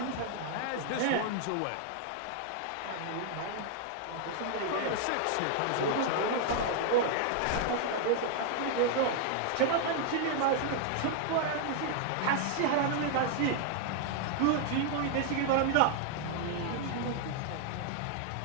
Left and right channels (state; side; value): different; both; correlation 0.00